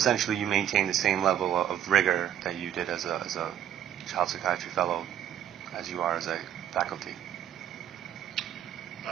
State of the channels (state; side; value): quieter; left; 10.5 dB